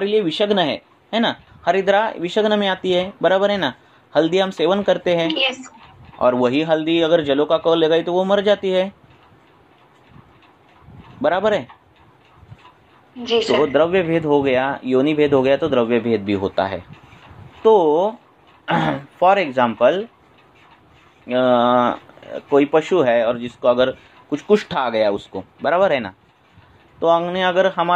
लिए विषग्न है ना, हरिद्रा विषग्न में आती है, बराबर है ना। हल्दी हम सेवन करते हैं, yes. और वही हल्दी अगर जलों का कौल लगाई तो वो मर जाती है, बराबर है। जी सर। तो द्रव्य भेद हो गया, योनि भेद हो गया, तो द्रव्य भेद भी होता है। तो फॉर एग्जाम्पल कोई पशु है और जिसको अगर कुछ कुष्ठ आ गया उसको, बराबर है ना, तो हमने अगर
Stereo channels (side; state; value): both; identical; correlation 1.00